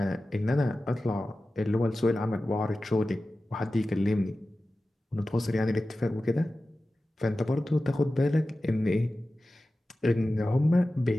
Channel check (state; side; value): normal; both; correlation 0.95